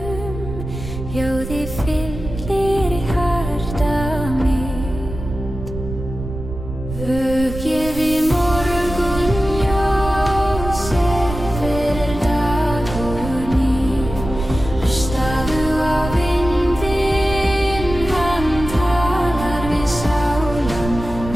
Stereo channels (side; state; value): right; noise; rumble, 9 dB below the sound